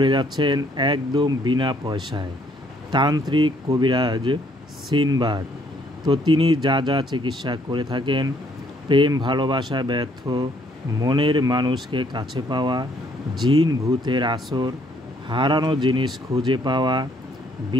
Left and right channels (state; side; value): normal; both; correlation 0.66